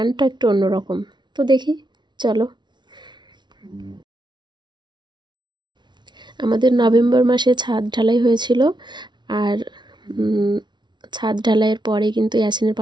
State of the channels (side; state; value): left; late; 0.21 ms